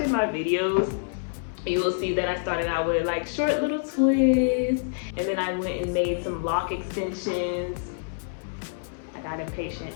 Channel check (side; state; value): right; silent; 60 dB below the other